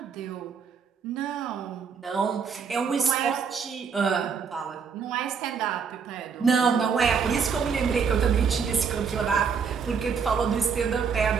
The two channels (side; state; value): left; quieter; 6.1 dB